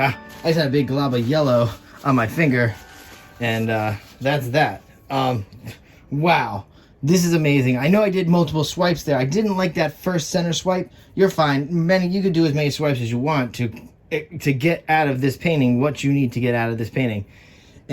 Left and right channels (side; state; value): both; identical; correlation 1.00